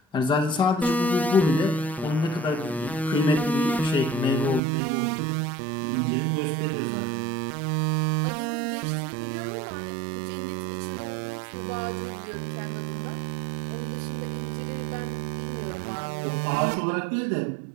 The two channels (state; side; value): drops out; left; at 4.6 s